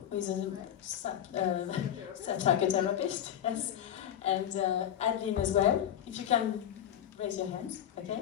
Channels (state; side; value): quieter; right; 10.5 dB